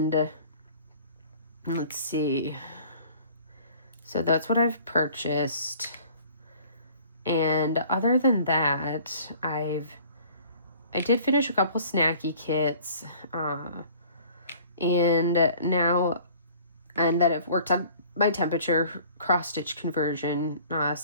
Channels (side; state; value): both; inverted; correlation -0.51